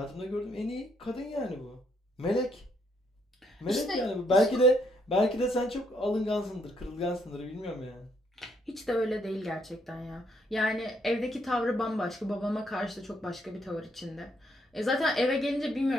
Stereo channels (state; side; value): normal; both; correlation 0.71